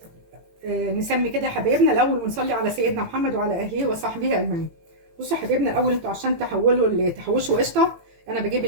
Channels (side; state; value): left; late; 18 ms